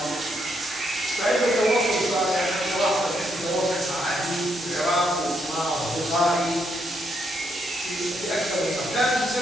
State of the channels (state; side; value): normal; both; correlation 0.77